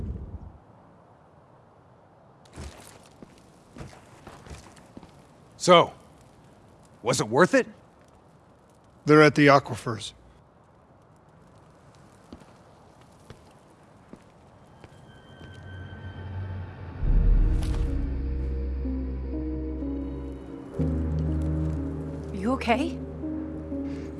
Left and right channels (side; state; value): both; identical; correlation 1.00